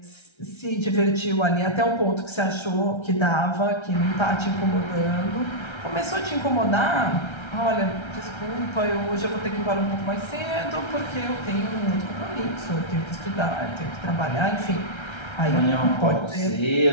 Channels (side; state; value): right; late; 1.3 ms